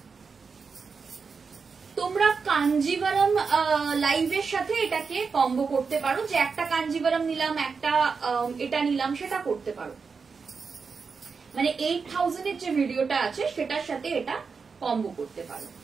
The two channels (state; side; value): quieter; left; 5.2 dB